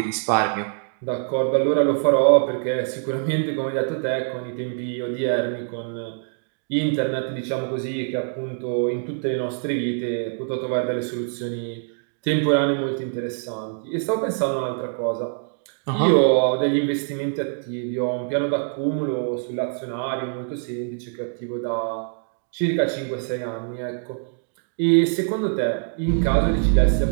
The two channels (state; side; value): silent; left; digital silence